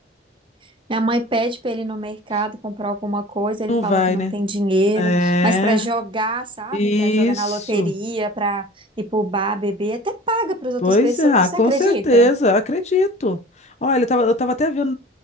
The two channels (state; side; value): normal; both; correlation 0.42